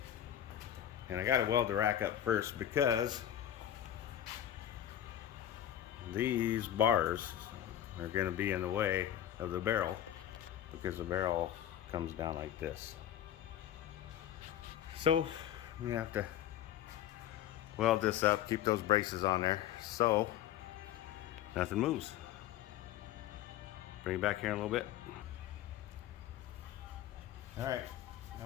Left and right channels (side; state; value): right; quieter; 11.2 dB